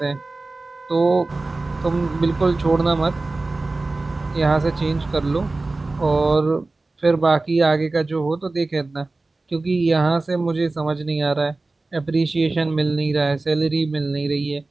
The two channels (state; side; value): quieter; left; 3.3 dB